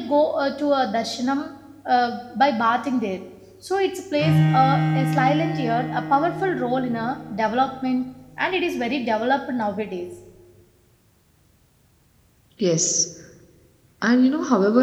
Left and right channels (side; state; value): both; identical; correlation 1.00